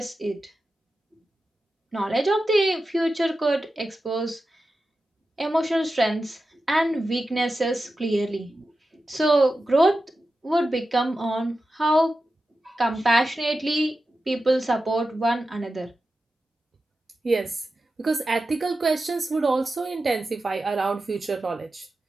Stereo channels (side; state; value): both; normal; correlation 0.92